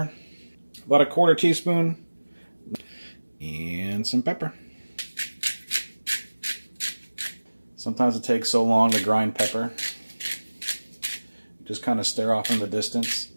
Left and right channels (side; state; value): both; inverted; correlation -1.00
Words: about a 1/4 teaspoon, and some pepper. Sometimes it takes so long to grind pepper. Just kind of stare off in the distance